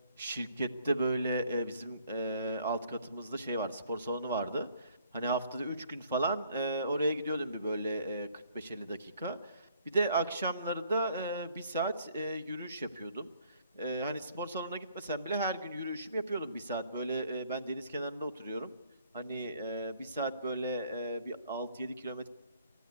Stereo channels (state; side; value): inverted; both; correlation -0.62